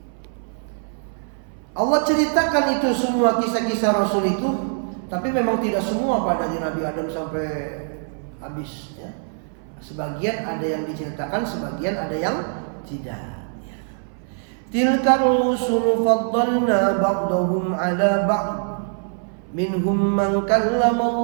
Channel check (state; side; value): silent; left; 59 dB below the other